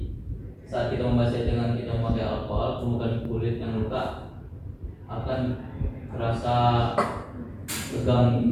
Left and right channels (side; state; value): both; identical; correlation 1.00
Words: saat kita membasahi dengan kita memakai alkohol, permukaan kulit yang luka akan terasa